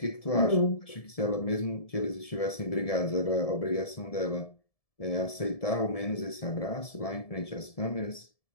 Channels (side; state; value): right; late; 1.7 ms